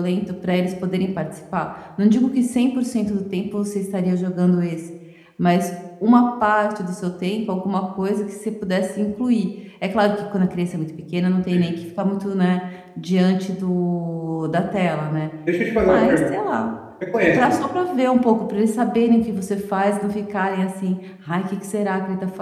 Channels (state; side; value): identical; both; correlation 1.00